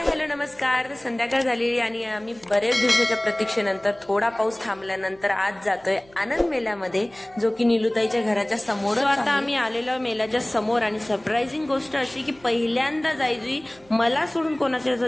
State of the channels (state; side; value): noise; right; hum, 28 dB below the sound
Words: hello नमस्कार. संध्याकाळ झालेली आणि आम्ही बरेच दिवसाच्या प्रतीक्षेनंतर थोडा पाऊस थांबल्यानंतर आज जातोय आनंद मेल्यामध्ये, जो की निलुताईच्या घराच्या समोर. आता आम्ही आलेलो मेल्याच्या समोर आणि सरप्राइझिंग गोष्ट अशी की पहिल्यांदा जायजुई मला सोडून कोणाच्या